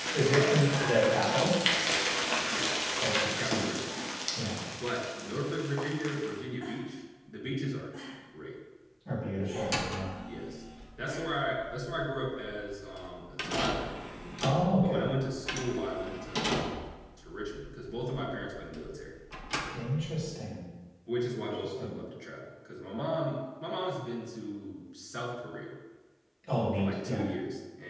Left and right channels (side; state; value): both; identical; correlation 1.00